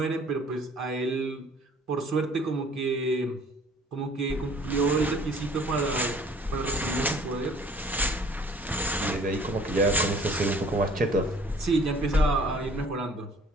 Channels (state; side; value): normal; both; correlation 0.53